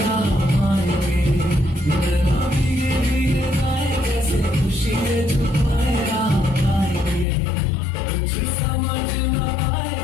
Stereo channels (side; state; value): right; drops out; at 7.2 s